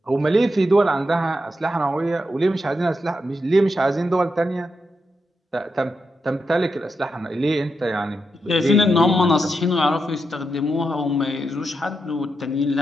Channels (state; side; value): normal; both; correlation 0.85